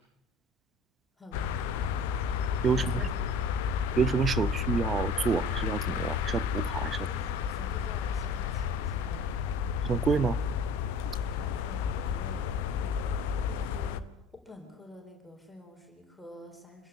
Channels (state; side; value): normal; both; correlation 0.44